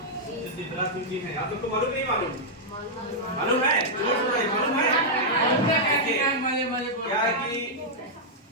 शिवराज सिंह जी हैं, आप लोग को मालूम नहीं मालूम? मालूम है? मालूम है? क्या है कि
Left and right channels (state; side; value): normal; both; correlation -0.07